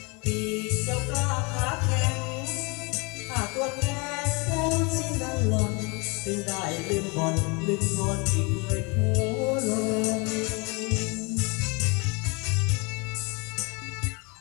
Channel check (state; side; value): quieter; right; 29.6 dB